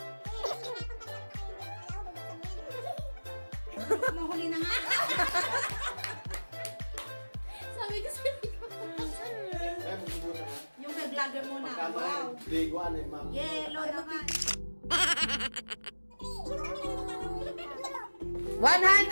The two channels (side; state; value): both; inverted; correlation -1.00